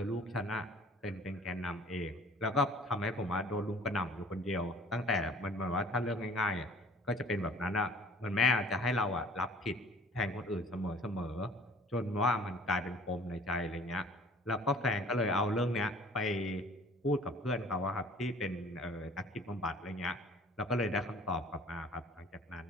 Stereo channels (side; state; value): both; normal; correlation 0.51